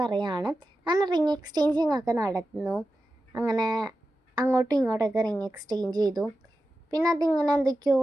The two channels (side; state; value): both; normal; correlation 0.92